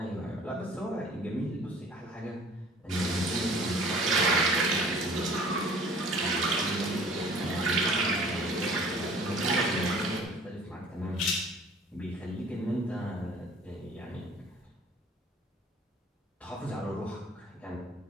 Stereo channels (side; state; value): both; normal; correlation 0.50